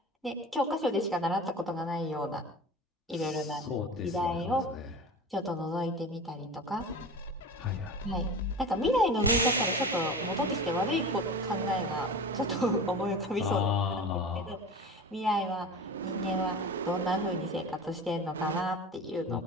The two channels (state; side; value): normal; both; correlation 0.33